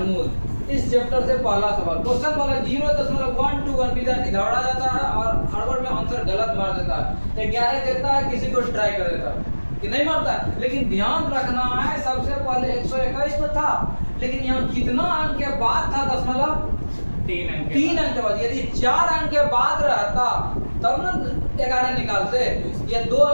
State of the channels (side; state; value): both; inverted; correlation -1.00